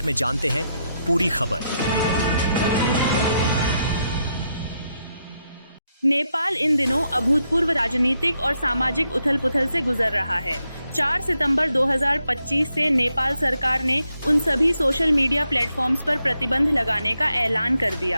में जानते हैं पूरी खबर। नेपाल इन दिनों अभूतपूर्व राजनीतिक और सामाजिक उथल-पुथल से गुजर रहा है। 4 सितंबर 2025 से नेपाल सरकार ने उन सभी सोशल मीडिया प्लेटफॉर्म्स पर प्रतिबंध लगाने का ऐलान कर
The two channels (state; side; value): inverted; both; correlation -0.81